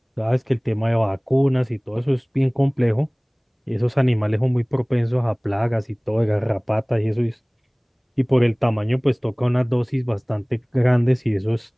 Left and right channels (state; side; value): identical; both; correlation 1.00